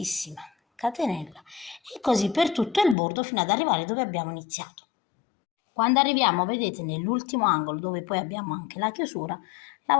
catenella, e così per tutto il bordo fino ad arrivare dove abbiamo iniziato. Quando arriviamo, vedete, nell'ultimo angolo, dove poi abbiamo anche la chiusura,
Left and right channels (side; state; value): right; drops out; at 3.0 s